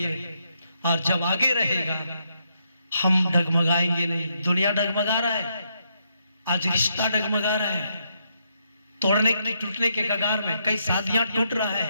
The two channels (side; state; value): both; inverted; correlation -0.78